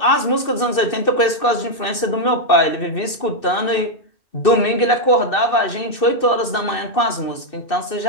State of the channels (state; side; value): late; right; 2.6 ms